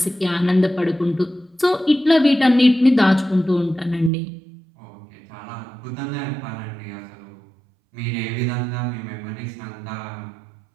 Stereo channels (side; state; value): left; drops out; at 4.1 s